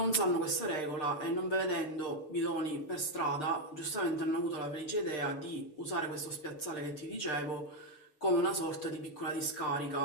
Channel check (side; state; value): right; late; 6.6 ms